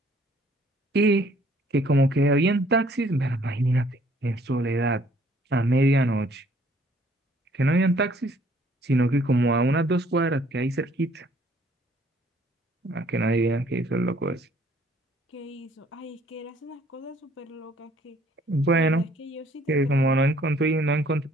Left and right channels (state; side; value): normal; both; correlation 0.60